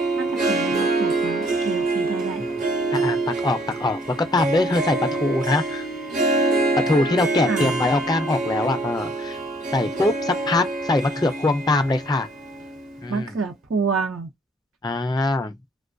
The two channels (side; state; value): both; normal; correlation 0.63